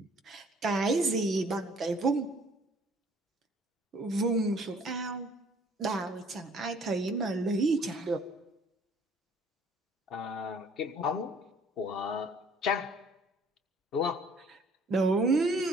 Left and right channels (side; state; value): both; normal; correlation 0.57